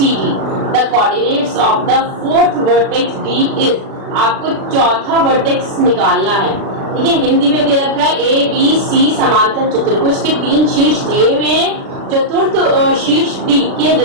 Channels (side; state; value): left; late; 36 ms